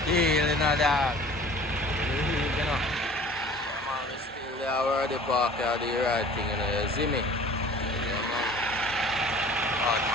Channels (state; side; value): normal; both; correlation 0.46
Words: Deal in a dog. You know. Yeah, man, we still there where the park are the right thing, you know, you see me? Yeah, man. Hard